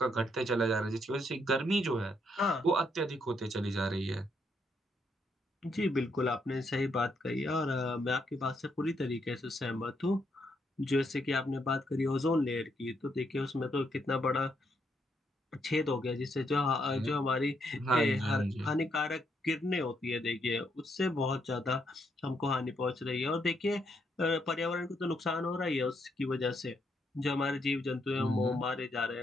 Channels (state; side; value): normal; both; correlation 0.76